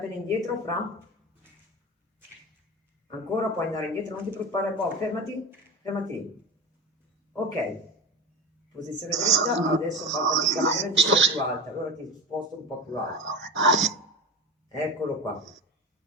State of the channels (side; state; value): both; normal; correlation 0.27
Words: indietro, fra. Ancora puoi andare indietro, non ti preoccupare poi. Fermati, fermati. Ok. Posizione dritta, adesso fatica a vedere di più alta, allora ti sposto un po' più alta. Eccolo qua.